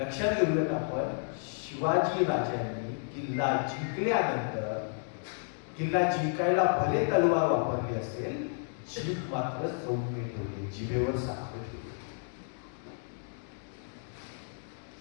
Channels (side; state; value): right; silent; digital silence